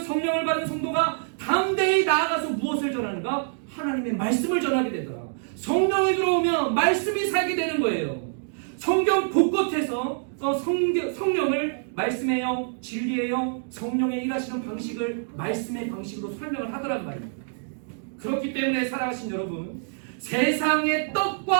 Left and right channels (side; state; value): left; silent; digital silence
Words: 성령을 받은 성도가 담대히 나아가서 무엇을 전하는가? 하나님의 말씀을 전하게 되더라. 성령이 들어오면 말씀이 살게 되는 거예요. 성경 곳곳에서 성령을 말씀의 영, 진리의 영, 성령의 일하시는 방식을 말씀의 방식으로 설명을 하더란 말입니다. 그렇기 때문에 살아가신 여러분, 세상의